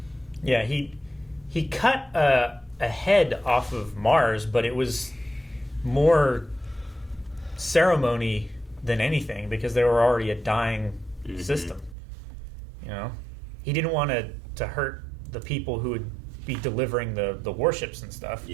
Yeah, he cut a head off of Mars, but it was more ceremony than anything because they were already a dying system. He didn't want to hurt the people who would be delivering the warships and stuff.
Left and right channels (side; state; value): left; drops out; at 12.0 s